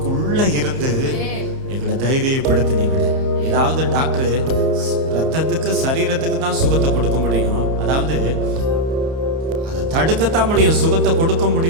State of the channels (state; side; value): late; left; 30 ms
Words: இருந்து எங்களை தைரியப்படுத்தினீங்களே. ஏதாவது டாக்டர் ரத்தத்துக்கு சரீரத்துக்கு தான் சுகத்தை கொடுக்க முடியும், அதாவது அதை தடுக்கத்தான் முடியும், சுகத்தை கொடுக்க